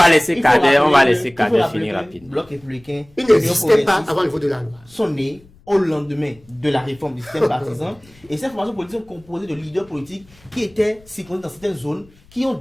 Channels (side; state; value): left; noise; rumble, 27 dB below the sound